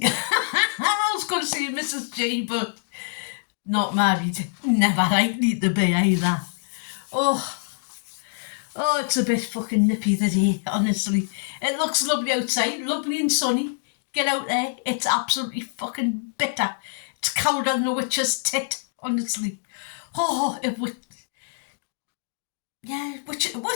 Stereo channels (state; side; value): silent; right; digital silence